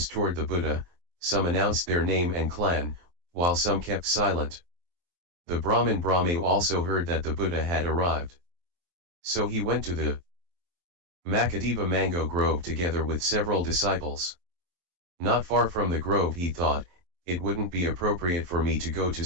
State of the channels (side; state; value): left; late; 23 ms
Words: toward the Buddha, some announced their name and clan, while some kept silent. The Brahmin Brahmayu also heard that the Buddha had arrived. So he went to the Makadeva mango grove together with several disciples. Not far from the grove he thought, it wouldn't be appropriate for me to go to